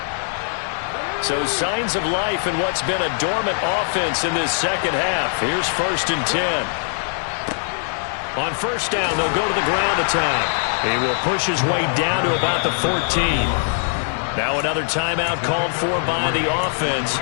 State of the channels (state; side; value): silent; right; 56 dB below the other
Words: So signs of life in what's been a dormant offense in this second half. Here's 1st and 10. On 1st down, they'll go to the ground attack. He will push his way down to about the 14. Now another timeout called for by the offense